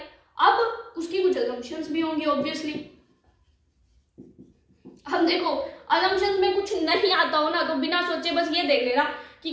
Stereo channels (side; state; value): both; identical; correlation 1.00